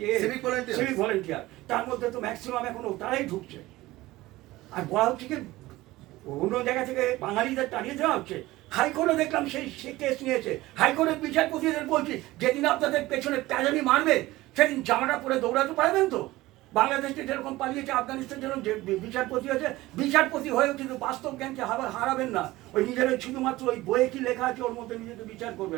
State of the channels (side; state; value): left; quieter; 18.3 dB